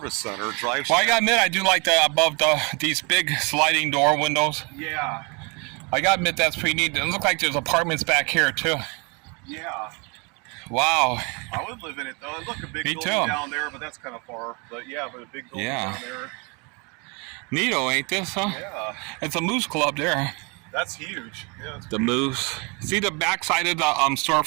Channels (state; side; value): quieter; left; 31.3 dB